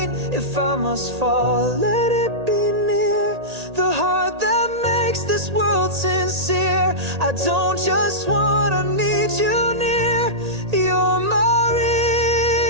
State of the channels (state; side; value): late; left; 1.8 ms